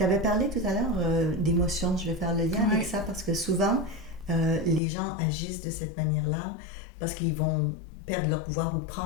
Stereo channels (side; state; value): right; drops out; at 4.8 s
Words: avais parlé tout à l'heure d'émotions. Je vais faire le lien avec ça parce que souvent, les gens agissent de cette manière-là parce qu'ils vont perdre leur pouvoir ou